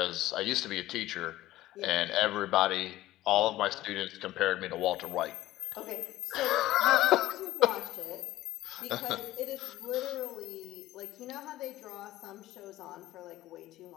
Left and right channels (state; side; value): quieter; right; 15.8 dB